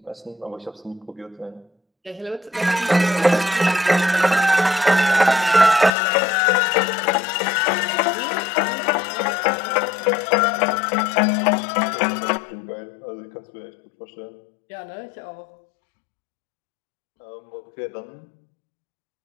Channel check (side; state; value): right; drops out; at 5.9 s